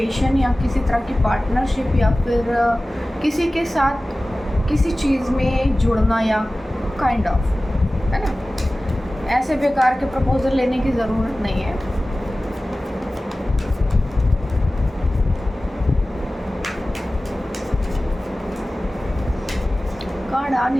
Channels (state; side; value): normal; both; correlation 0.97